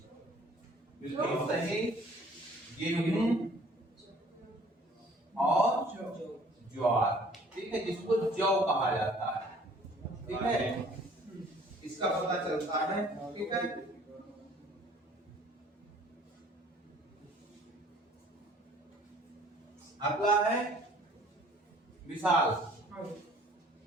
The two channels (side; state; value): both; normal; correlation 0.54